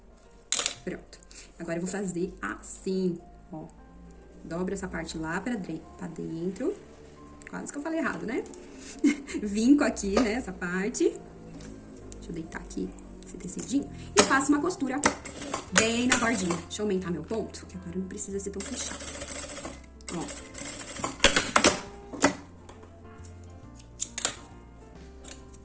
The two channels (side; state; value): both; identical; correlation 1.00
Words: Pronto. Agora eu vou fazer assim, ó. Dobro essa parte lá pra dentro. Quase que eu falei errado, né? Vinco aqui, né, essa parte. Deixa eu deitar aqui esse tecidinho. E faço uma costura bem na bordinha. Deixa eu aumentar meu ponto, que agora não precisa ser tão fechado. Ó.